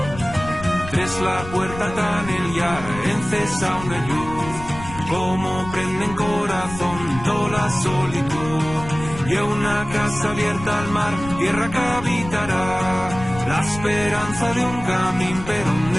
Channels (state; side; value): noise; left; rumble, 12 dB below the sound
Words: Tres la puerta tan el yar, encesa una luz, como prende en corazón toda la solitud. Y una casa abierta al mar, tierra que habitará, la esperanza de un camino, pero